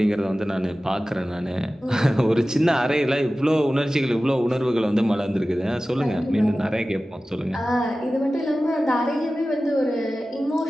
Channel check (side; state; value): both; normal; correlation 0.96